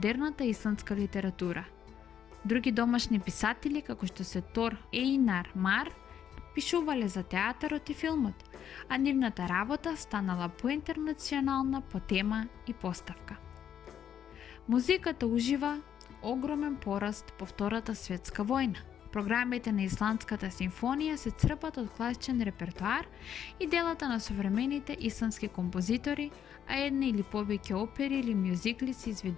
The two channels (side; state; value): right; quieter; 9.2 dB